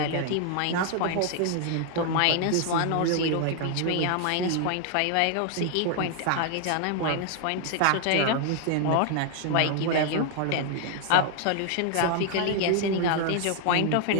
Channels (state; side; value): different; both; correlation 0.00